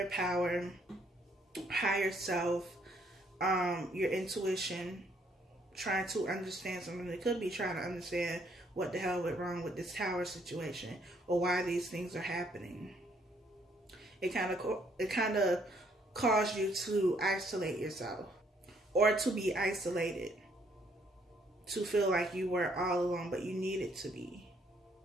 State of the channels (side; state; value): both; normal; correlation 0.68